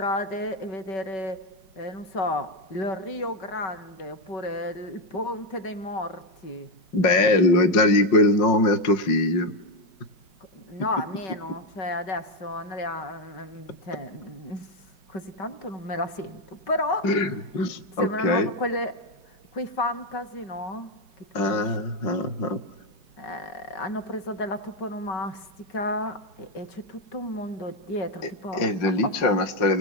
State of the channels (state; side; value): late; right; 5.5 ms